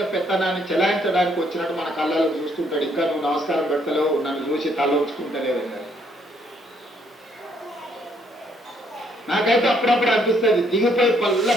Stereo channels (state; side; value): normal; both; correlation 0.69